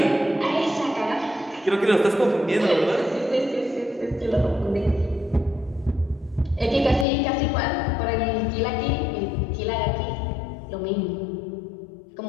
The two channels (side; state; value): right; drops out; at 7.1 s